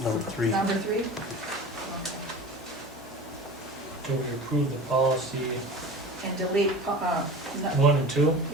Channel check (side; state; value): both; normal; correlation 0.36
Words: number 3. Number 3? Okay. So we approve the policy And delete, 1 and 2?